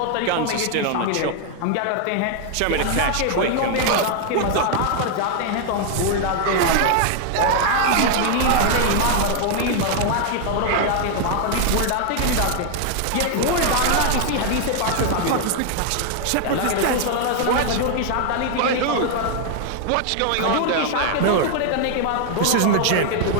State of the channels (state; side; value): different; both; correlation 0.00